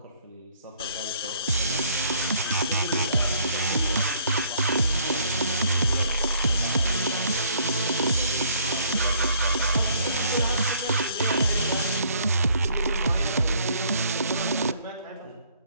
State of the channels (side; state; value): both; inverted; correlation -0.62